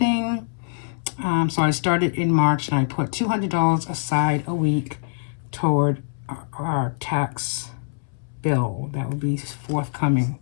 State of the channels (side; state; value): right; silent; 63 dB below the other